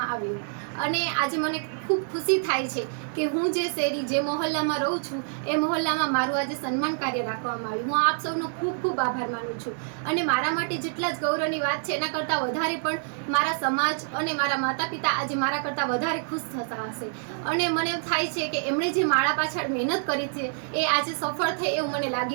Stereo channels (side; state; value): left; silent; 57 dB below the other